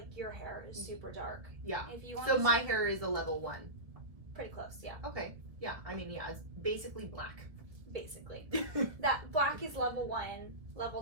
your hair is super dark. Yeah. If you want so my hair is a level 1. Pretty close, yeah. Okay. Yeah. I mean, yeah, it's basically black. Basically. That black is level 1. Level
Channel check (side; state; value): left; late; 1.5 ms